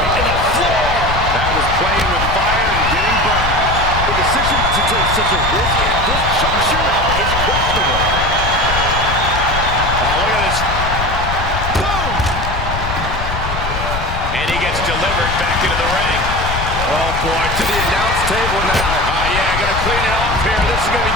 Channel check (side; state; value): left; noise; rumble, 5 dB below the sound